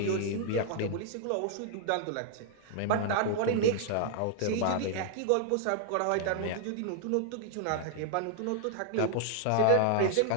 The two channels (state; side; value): different; both; correlation 0.00